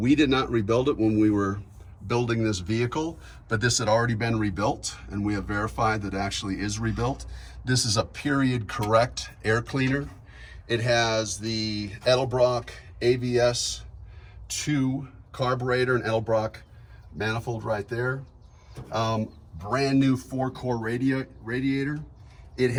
did not rebuild it when we were building this vehicle, but this had already been rebuilt and we have verified that it actually is rebuilt. This is a period correct air cleaner. It has the Edelbrock AVS 2 carburetor and Edelbrock manifold right there. Brand new 4-core radiator. It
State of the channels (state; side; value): identical; both; correlation 1.00